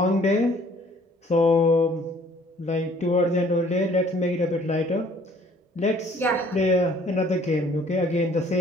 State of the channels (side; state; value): both; normal; correlation 0.57